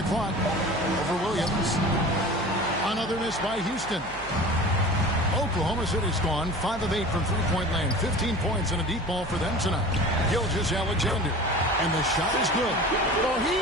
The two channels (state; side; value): noise; right; hum, 17 dB below the sound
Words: clock. Over Williams. Another miss by Houston. Oklahoma City's gone 5 of 8 from three-point land. 15 points and a deep ball for them tonight. Gilgeous-Alexander. And the shot is good. Well, he